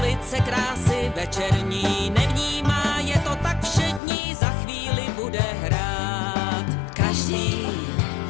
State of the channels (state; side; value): drops out; right; at 4.0 s